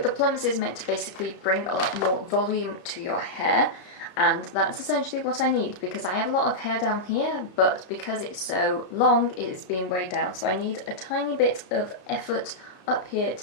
Plumps is meant to basically bring a lot more volume to your hair. And that's essentially what I need because I have a lot of hair down here, but because it's so long, it is being weighed down. So I need a tiny bit of effort up here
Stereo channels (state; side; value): late; right; 33 ms